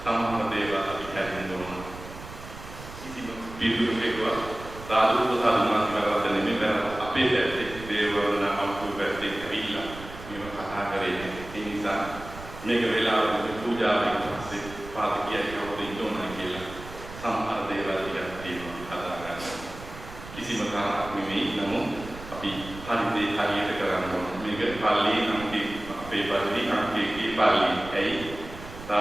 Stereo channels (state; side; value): noise; right; rumble, 14 dB below the sound